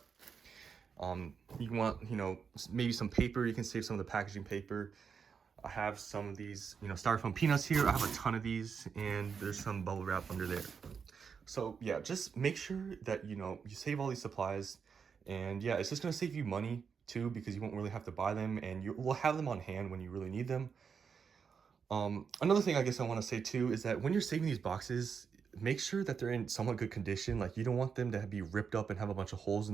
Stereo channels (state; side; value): quieter; left; 6.3 dB